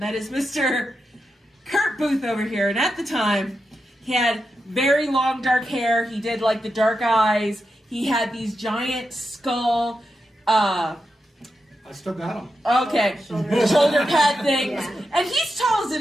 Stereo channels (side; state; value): both; normal; correlation 0.88